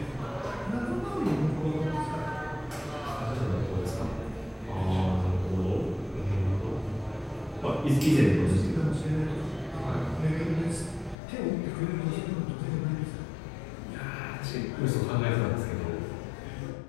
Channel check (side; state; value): right; drops out; at 11.2 s